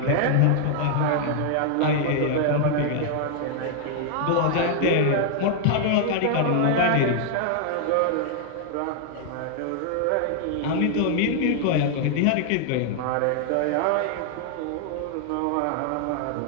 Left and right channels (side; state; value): both; different; correlation -0.01